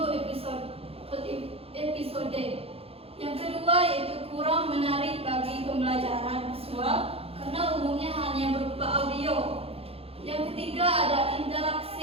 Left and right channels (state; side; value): late; left; 0.28 ms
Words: episode. Yang kedua yaitu kurang menarik bagi pembelajaran visual karena umumnya hanya berupa audio. Yang ketiga ada